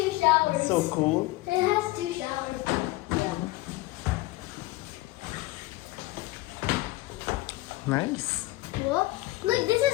showers. So cool. It has 2 showers. Nice. Look, look, this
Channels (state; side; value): quieter; right; 19.1 dB